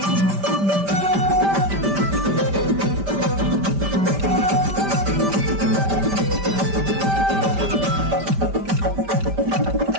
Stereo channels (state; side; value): late; left; 5.1 ms